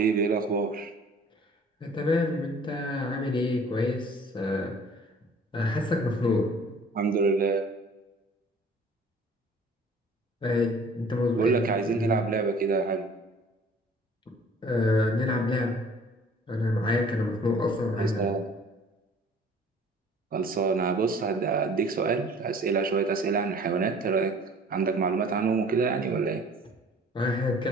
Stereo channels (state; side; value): normal; both; correlation 0.51